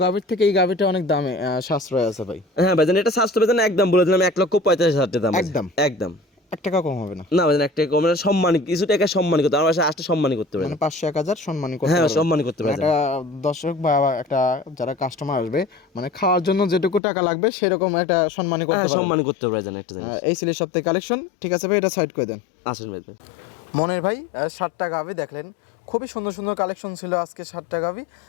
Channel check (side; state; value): right; drops out; at 17.0 s